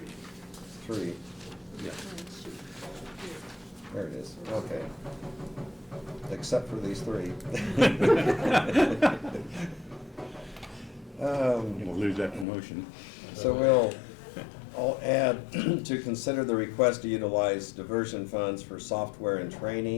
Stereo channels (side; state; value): right; drops out; at 12.5 s